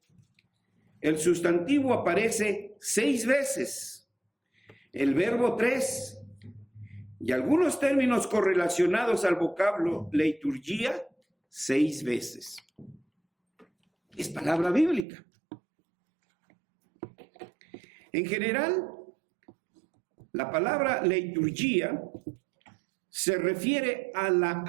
el sustantivo aparece 6 veces, el verbo 3, y algunos términos correlacionados al vocablo liturgia 6 veces. Es palabra bíblica. En general, la palabra liturgia se refiere a la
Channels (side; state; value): left; drops out; at 15.1 s